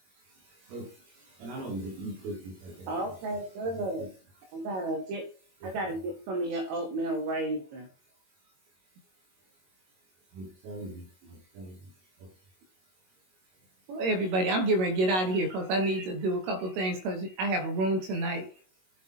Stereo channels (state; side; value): late; left; 22 ms